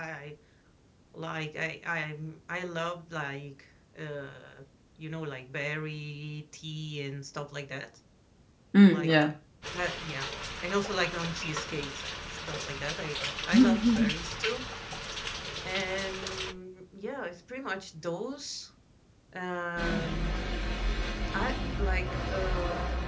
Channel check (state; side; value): identical; both; correlation 1.00